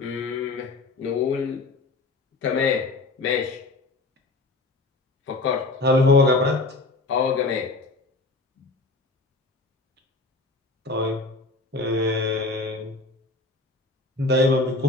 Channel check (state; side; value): quieter; right; 3.2 dB